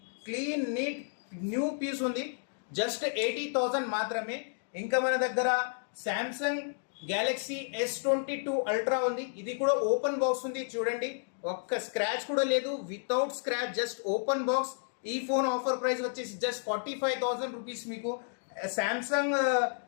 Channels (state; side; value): silent; right; digital silence